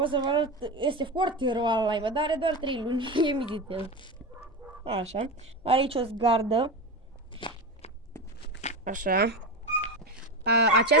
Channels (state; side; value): normal; both; correlation 0.23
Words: să vă arăt, este foarte rău live, dar are doar 3 luni, e militel. Așa, are aici o zgardă. Așa.